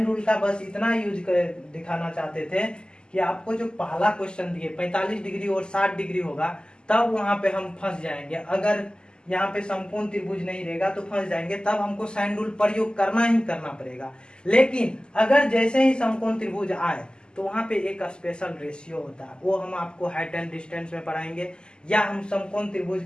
रूल का बस इतना यूज कर दिखाना चाहते थे कि आपको जो पहला क्वेश्चन दिए 45 डिग्री और 60 डिग्री होगा तब वहां पे हम फंस जाएंगे, अगर यहाँ पे समकोण त्रिभुज नहीं रहेगा तो फंस जाएंगे, तब हमको साइन रूल प्रयोग करना ही करना पड़ेगा। लेकिन अगर जैसे ही समकोण त्रिभुज आए तो वहां पे एक स्पेशल रेशियो होता है, वो हम आपको हाइट एंड डिस्टेंस में पढ़ाएंगे, या हम समकोण त्रिभुज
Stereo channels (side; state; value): right; late; 0.047 ms